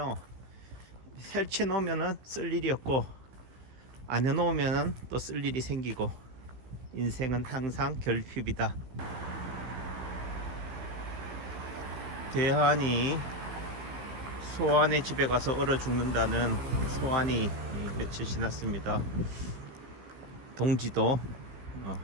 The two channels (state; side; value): late; left; 15 ms